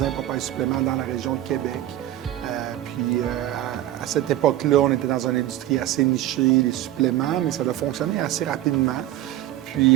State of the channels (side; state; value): left; quieter; 13.8 dB